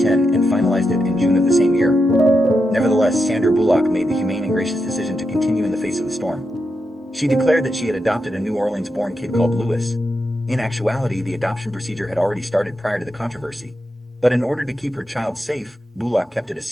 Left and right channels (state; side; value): normal; both; correlation 0.86